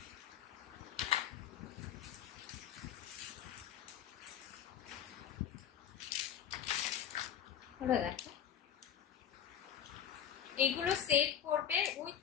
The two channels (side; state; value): right; quieter; 9.4 dB